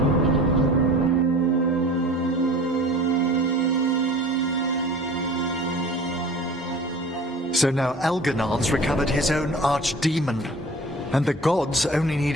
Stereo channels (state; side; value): normal; both; correlation 0.42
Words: So now Elganan's recovered his own archdemon, and the gods only need